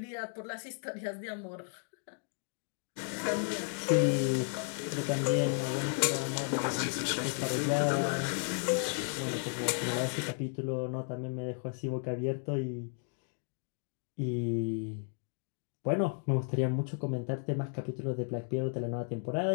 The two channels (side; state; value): right; silent; 55 dB below the other